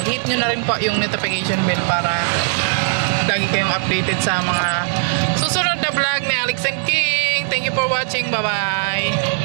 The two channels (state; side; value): silent; left; digital silence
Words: hit nyo na rin po yung notification bell para lagi kayong updated sa mga susunod na vlog ni Alex and King. Thank you for watching. Bye-bye.